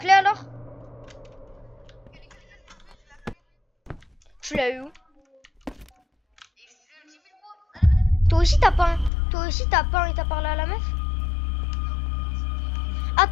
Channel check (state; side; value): drops out; right; at 9.1 s